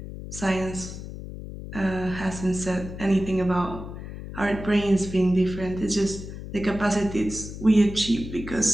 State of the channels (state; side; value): noise; left; hum, 10 dB below the sound